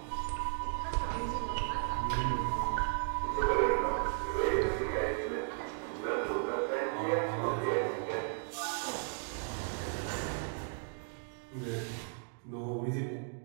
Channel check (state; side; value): silent; left; 54 dB below the other